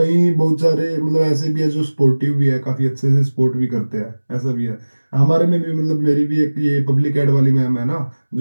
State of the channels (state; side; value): inverted; both; correlation -1.00